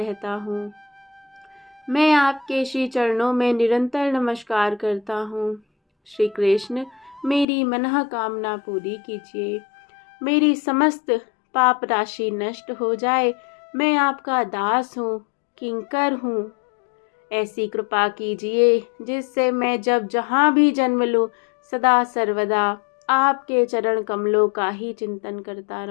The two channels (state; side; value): drops out; right; at 7.5 s